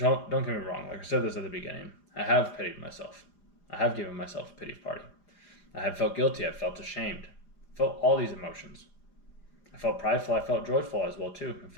get me wrong, like I said this at the beginning, I have pitied myself. I have given myself a pity party. I have felt guilty. I've felt ashamed. I felt all these emotions. I felt prideful. I felt joyful as well too. I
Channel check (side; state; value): right; late; 4.9 ms